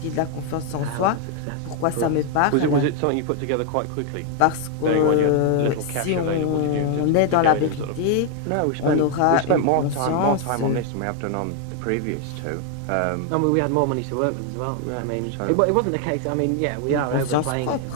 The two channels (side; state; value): both; different; correlation 0.00